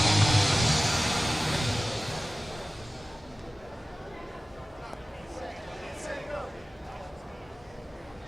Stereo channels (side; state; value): both; normal; correlation 0.96